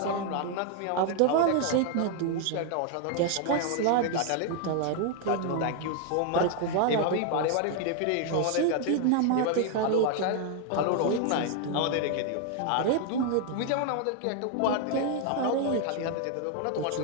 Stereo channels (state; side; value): different; both; correlation 0.00